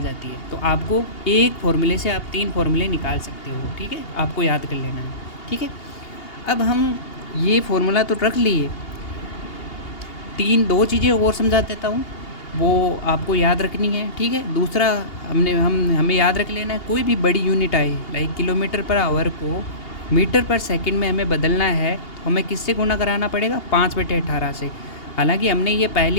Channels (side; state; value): right; late; 2.8 ms